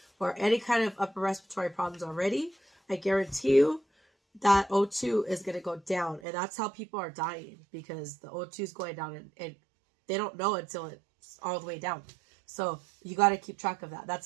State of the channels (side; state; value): left; drops out; at 6.2 s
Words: or any kind of upper respiratory problems already, I guarantee you, that O2 is going to go down. And that's how people are dying, because the O2 is going down and they don't know until it's all the way down. So you got to keep track of that.